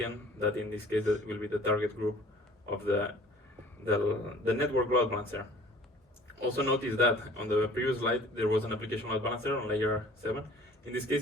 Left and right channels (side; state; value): both; normal; correlation 0.50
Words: that in this case will be the target group of the network load balancer. Also notice that on the previous slide there was an application load balancer on layer 7. In this